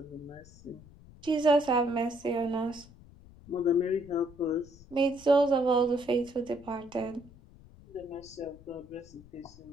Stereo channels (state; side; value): noise; left; rumble, 22 dB below the sound